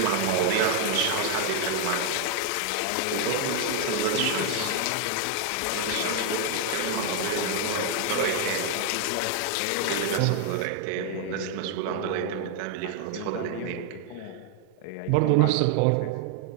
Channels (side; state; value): both; different; correlation 0.00